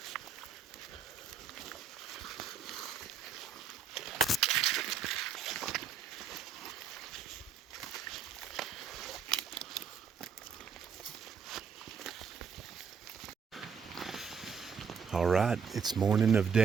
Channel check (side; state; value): left; quieter; 6.3 dB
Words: All right, it's morning of